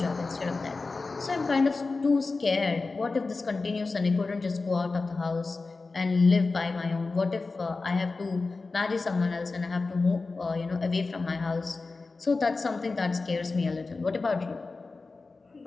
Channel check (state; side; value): quieter; right; 3.8 dB